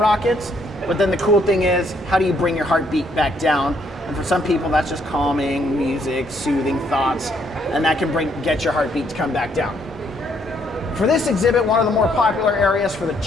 But then the cool thing is, how do you bring your heartbeat back down? And for some people, that's just calming music, soothing thoughts, and that can get your heartbeat to come back down. For this exhibit, one of the more popular areas for the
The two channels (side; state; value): both; normal; correlation 0.70